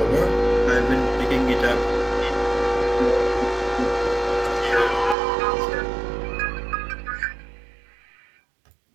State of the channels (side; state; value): left; drops out; at 5.2 s